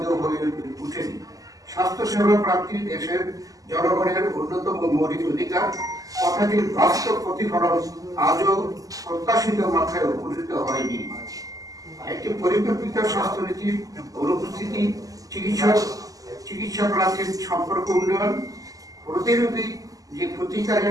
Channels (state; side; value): late; left; 0.17 ms